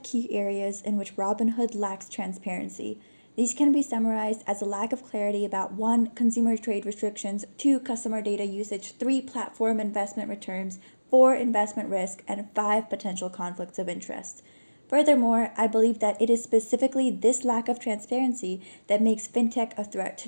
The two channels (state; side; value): inverted; both; correlation -1.00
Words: key areas in which Robinhood lacks transparency. These can be summarized as a lack of clarity about 1. Consumer trade restrictions, 2. Customer data usage, 3. Platform investment returns, 4. Investment risk, and 5. Potential conflicts of interest. Furthermore, I believe that it is specifically this lack of transparency that makes fintech a threat